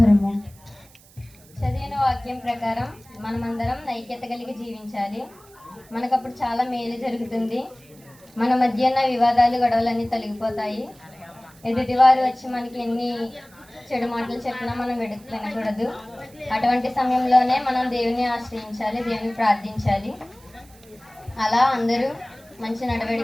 చదివిన వాక్యం ప్రకారం మనమందరం ఐక్యత కలిగి జీవించాలి. మనకప్పుడు చాలా మేలు జరుగుతుంది. మన మధ్య ఉన్న వివాదాలు, గొడవలన్నీ తొలగిపోతాయి. ఎదుటివారు వచ్చి మనకి ఎన్ని చెడు మాటలు చెప్పినా మనం వినకూడదు. అటువంటి సమయంలోనే మనం దేవుని ఆశ్రయించాలి, దేవుని ప్రార్థించాలి. అలా అందరూ మంచి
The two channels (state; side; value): noise; right; hiss, 26 dB below the sound